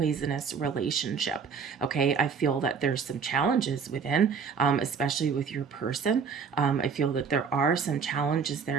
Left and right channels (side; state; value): left; quieter; 6.0 dB